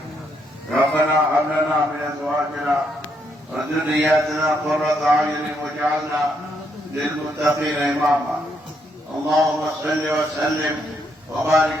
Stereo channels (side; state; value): both; normal; correlation 0.75